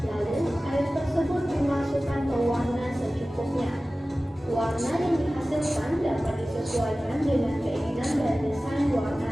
Lalu air tersebut dimasukkan ke warna secukupnya. Warna yang dihasilkan dapat disesuaikan dengan keinginan dan desain warna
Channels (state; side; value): normal; both; correlation 0.97